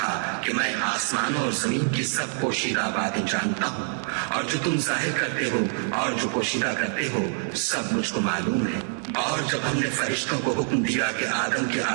کہ میں آسمانوں اور زمین کی سب پوشیدہ باتیں جانتا ہوں، اور جو تم ظاہر کرتے ہو اور جو پوشیدہ کرتے ہو سب مجھ کو معلوم ہے۔ اور جب ہم نے فرشتوں کو حکم دیا کہ آدم کے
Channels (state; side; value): silent; left; 56 dB below the other